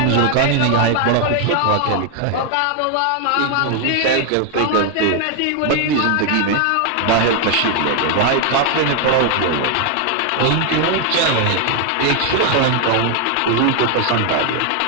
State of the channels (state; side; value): different; both; correlation 0.00